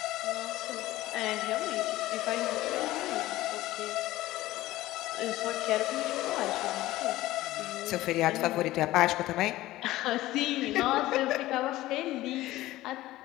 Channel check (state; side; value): quieter; right; 16.6 dB